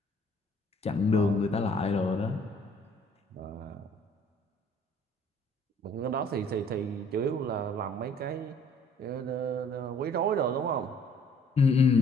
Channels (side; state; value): both; normal; correlation 0.58